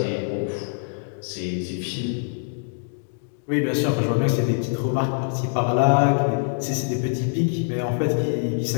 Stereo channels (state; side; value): silent; right; digital silence